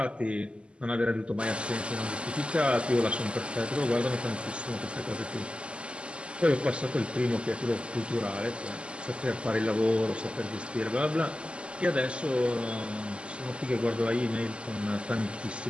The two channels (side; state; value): left; late; 0.053 ms